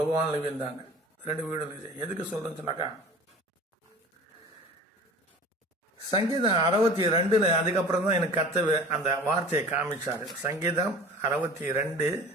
விழுந்தாங்க. 2 வீடு இருந்துச்சு. எதுக்கு சொல்றேன்னு சொன்னாக்கா, சங்கீதம் 62 அதுக்கப்புறம் தான் எனக்கு கர்த்தர் அந்த வார்த்தையை காமிச்சாரு. சங்கீதம் 62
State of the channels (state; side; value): normal; both; correlation 0.41